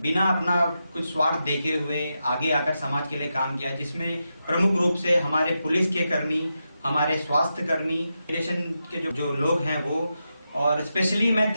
बिना अपना कुछ स्वार्थ देखे हुए आगे आकर समाज के लिए काम किया, जिसमें प्रमुख रूप से हमारे पुलिस के कर्मी, हमारे स्वास्थ्य कर्मी, इमिग्रेशन के जो लोग हैं वो, और स्पेशली मैं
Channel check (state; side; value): inverted; both; correlation -0.88